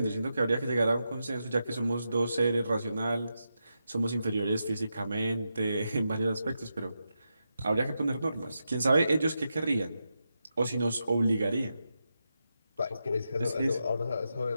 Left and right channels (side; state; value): both; inverted; correlation -0.87